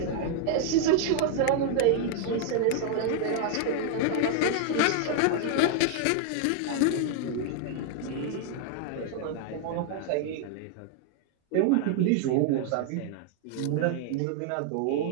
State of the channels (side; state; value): both; different; correlation 0.00